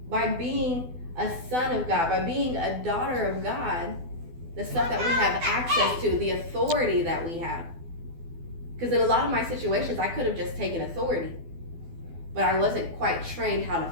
By being a son of God, by being a daughter of God, the stuff that we have access to, the authority that we have. Because in a lot of my situations, I could have just taken authority, but I wasn't quite trained how to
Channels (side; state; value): left; late; 12 ms